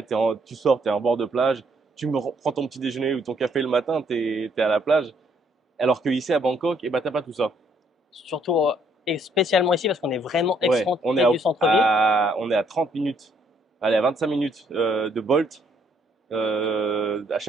tu sors, tu es en bord de plage, prends ton petit déjeuner ou ton café le matin, tu es à la plage. Alors que ici à Bangkok, eh ben, t'as pas tout ça. Surtout, et spécialement ici, parce qu'on est vraiment Ouais, excentré du centre-ville. on est à 30 minutes, allez, à 25 minutes de Bolt. À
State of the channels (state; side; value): normal; both; correlation 0.68